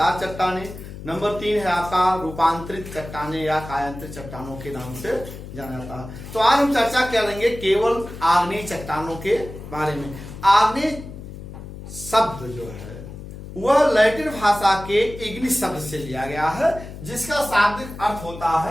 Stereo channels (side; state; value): left; noise; hum, 12 dB below the sound